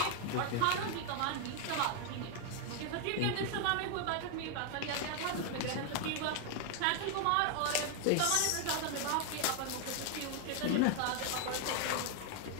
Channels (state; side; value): different; both; correlation 0.01